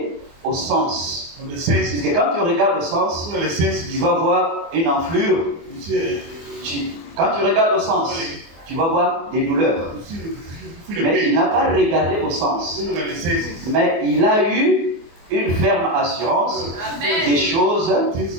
au sens. of the Parce senses. que quand tu regardes au sens, Look at the senses. tu vas voir une enflure. You see, Quand tu regardes au sens, tu vas voir des douleurs. you feel the Mais il pain. n'a pas regardé au sens. Look at the senses. Mais il a eu une ferme assurance Amen. des choses Things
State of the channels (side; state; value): left; late; 24 ms